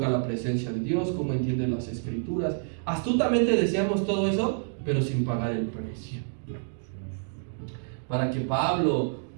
la presencia de Dios, cómo entiende las escrituras. Astutamente deseamos todo eso, pero sin pagar el precio. Para que Pablo,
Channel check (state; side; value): silent; left; digital silence